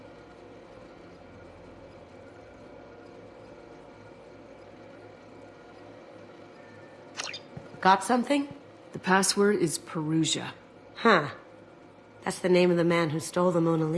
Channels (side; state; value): both; identical; correlation 1.00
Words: Got something? The password is Perugia. Huh. That's the name of the man who stole the Mona